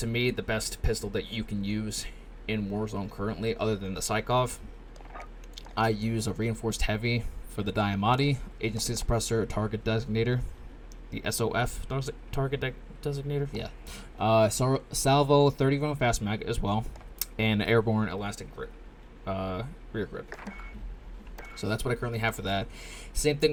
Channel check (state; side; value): identical; both; correlation 1.00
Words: me, the best pistol that you can use in Warzone currently, other than the Psychov. I use a reinforced heavy for the Diamati, agency suppressor, target designator, the SOF target designator, yeah. Salvo 30 round fast mag as well, and airborne elastic grip, rear grip. So that's what I currently have for that. Same